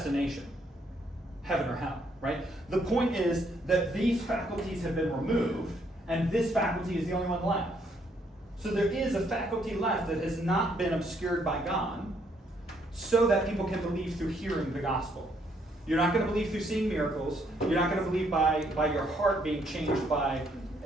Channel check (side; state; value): both; normal; correlation 0.70